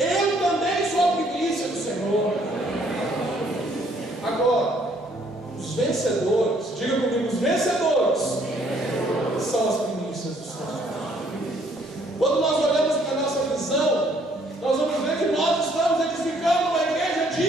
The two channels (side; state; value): both; normal; correlation 0.64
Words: também sou a primícia do Senhor. Agora, os vencedores, diga comigo, os vencedores são as primícias do Senhor. Quando nós olhamos para a nossa visão, nós vamos ver que nós estamos edificando uma igreja